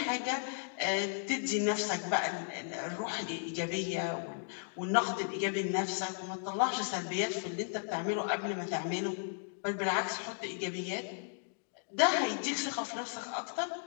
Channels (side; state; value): right; silent; digital silence